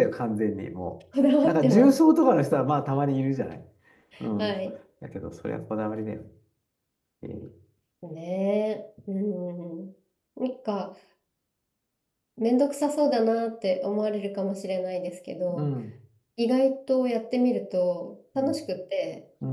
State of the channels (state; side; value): identical; both; correlation 1.00